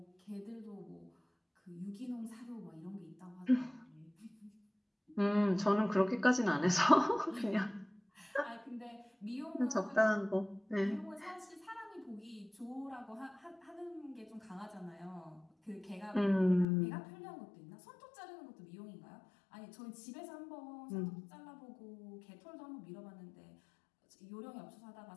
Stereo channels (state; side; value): drops out; right; at 16.7 s